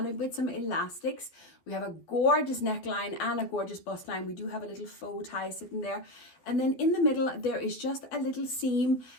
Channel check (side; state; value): right; late; 12 ms